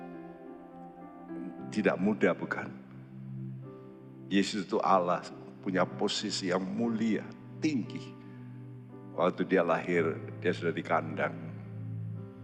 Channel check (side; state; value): both; identical; correlation 1.00